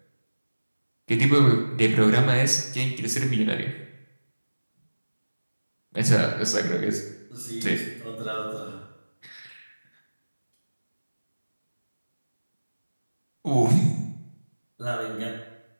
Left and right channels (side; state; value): both; inverted; correlation -1.00